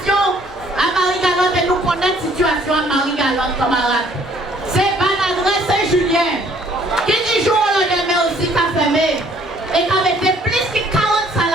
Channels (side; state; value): both; normal; correlation 0.60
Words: à Marie-Galante, et nous connaissons la situation à Marie-Galante, camarades. C'est Banadresse Saint-Julien qui du jour au lendemain aussi qu'a fermé et qui a été plus que 40